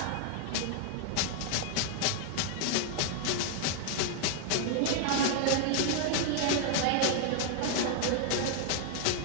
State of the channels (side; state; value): both; different; correlation 0.00